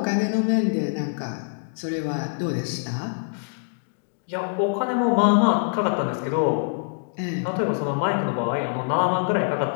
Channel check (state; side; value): silent; right; digital silence